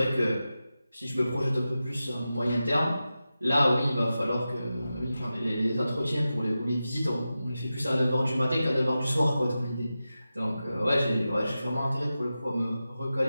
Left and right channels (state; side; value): inverted; both; correlation -0.93